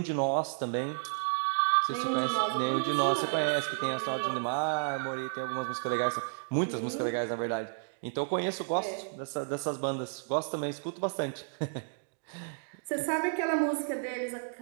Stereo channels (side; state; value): left; silent; digital silence